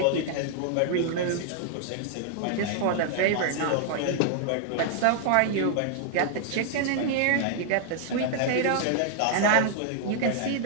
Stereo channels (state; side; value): different; both; correlation -0.01